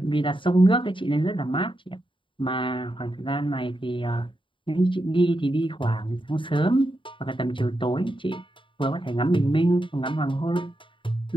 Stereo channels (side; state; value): right; late; 0.25 ms